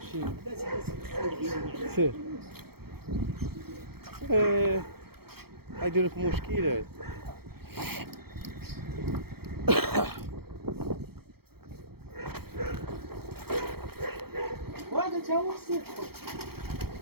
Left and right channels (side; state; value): left; late; 0.95 ms